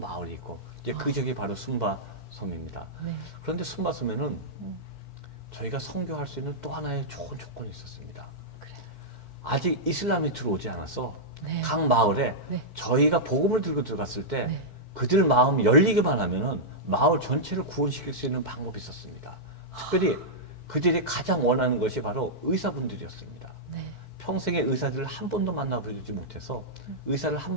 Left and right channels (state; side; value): late; right; 4.5 ms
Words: 있고 이제 그 지역이 바로 순바섬입니다. 네. 그런데 순바섬에는 저희가 선교할 수 있는 또 하나의 좋은 조건이 있었습니다. 그래요. 아직 이슬람이 들어오지 않아서 네. 각 마을에 네. 저희가 복음을 들고 들어갔을 때 네. 그들 마음이 열리기만 하면은 마을 전체를 구원시킬 수 있는 방법이 있었습니다. 특별히 그들이 가장 원하는 것이 바로 의사분들이었습니다. 네. 평생에 의사들을 한 번도 만나보지 못해서 의사를 한